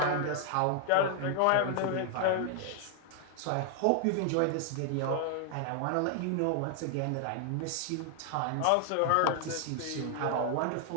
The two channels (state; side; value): different; both; correlation 0.00